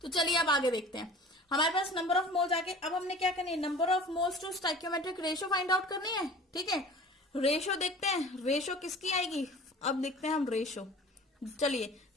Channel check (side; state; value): both; normal; correlation 0.42